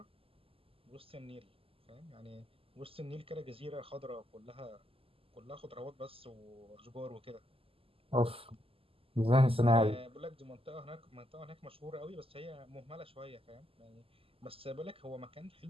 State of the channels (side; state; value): left; late; 0.27 ms